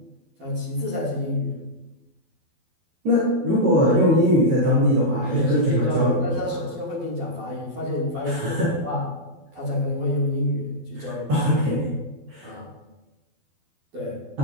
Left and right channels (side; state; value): left; late; 12 ms